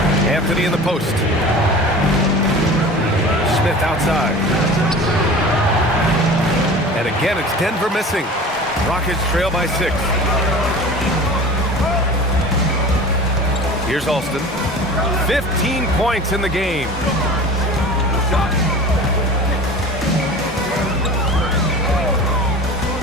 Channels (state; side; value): normal; both; correlation 0.38